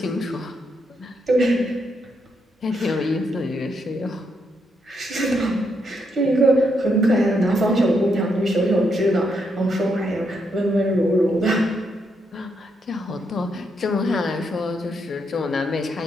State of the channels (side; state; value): both; normal; correlation 0.78